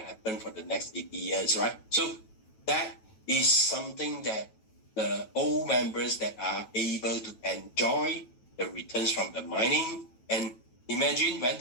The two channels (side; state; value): right; late; 9.1 ms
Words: for the next 80 years, right? So that is something that the old members that are able to enjoy the returns from the mining. And imagine when